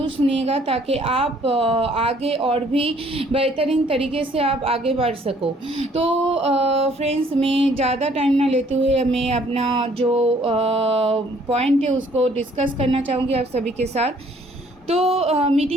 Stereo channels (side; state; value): both; normal; correlation 0.61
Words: सुनिएगा ताकि आप आगे और भी बेहतरीन तरीके से आप आगे बढ़ सको। तो फ्रेंड्स, मैं ज़्यादा टाइम ना लेते हुए मैं अपना जो पॉइंट है उसको डिस्कस करना चाहूँगी आप सभी के साथ। तो